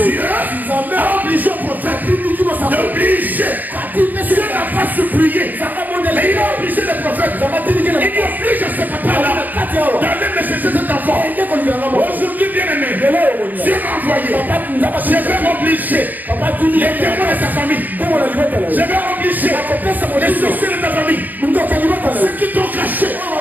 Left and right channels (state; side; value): late; left; 0.084 ms